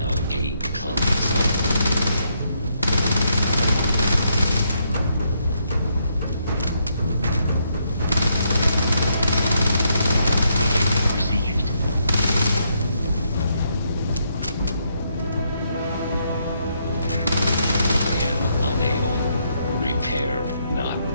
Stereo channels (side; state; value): both; inverted; correlation -0.76